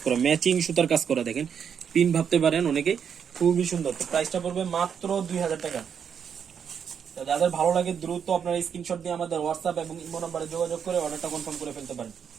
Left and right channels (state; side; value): quieter; left; 7.4 dB